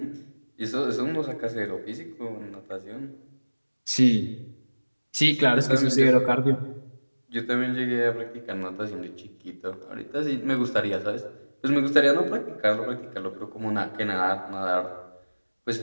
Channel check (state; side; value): inverted; both; correlation -1.00